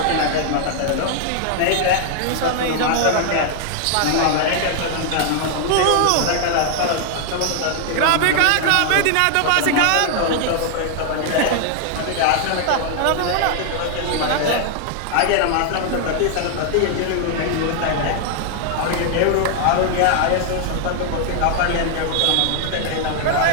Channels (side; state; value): both; different; correlation 0.00